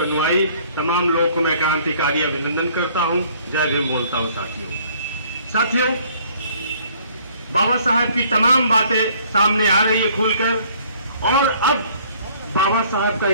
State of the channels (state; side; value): inverted; both; correlation -0.59